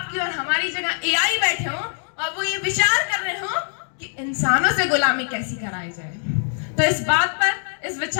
और हमारी जगह एआई बैठे हो और वो ये विचार कर रहे हो कि इंसानों से गुलामी कैसी कराई जाए। तो इस बात पर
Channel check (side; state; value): right; silent; digital silence